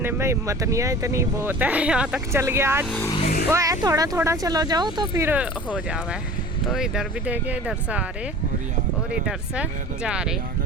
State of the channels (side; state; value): both; normal; correlation 0.41